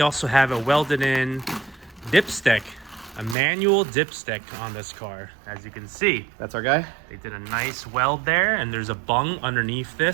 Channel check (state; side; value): drops out; left; at 3.4 s